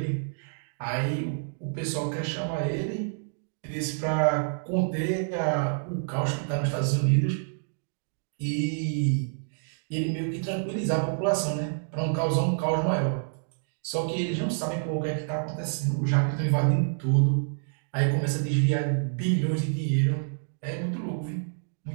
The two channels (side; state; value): left; silent; digital silence